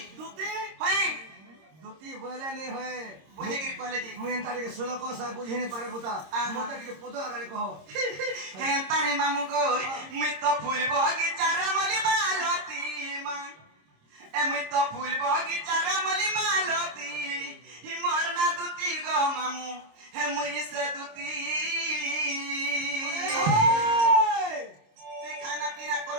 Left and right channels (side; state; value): left; late; 26 ms